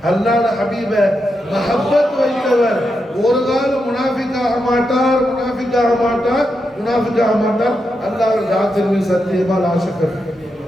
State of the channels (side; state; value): both; normal; correlation 0.85